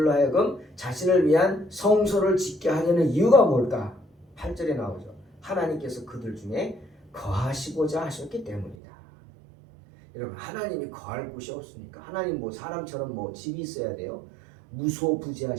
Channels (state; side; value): drops out; left; at 8.8 s